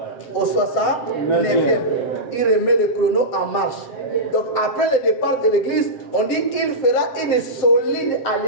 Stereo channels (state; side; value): late; right; 7.8 ms